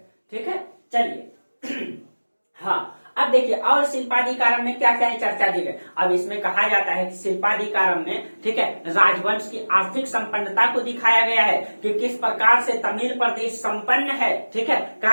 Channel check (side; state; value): both; inverted; correlation -1.00